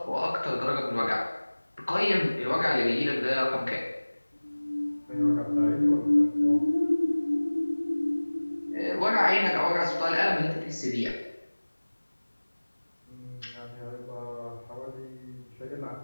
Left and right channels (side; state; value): both; inverted; correlation -1.00